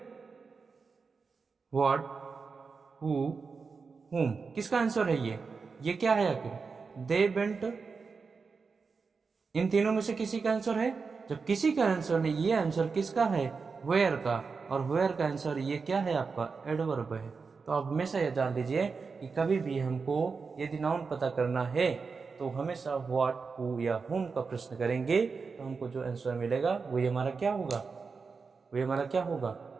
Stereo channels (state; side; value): quieter; left; 4.9 dB